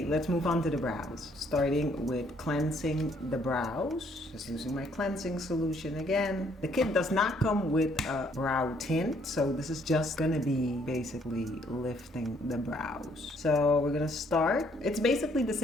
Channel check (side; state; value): both; normal; correlation 0.66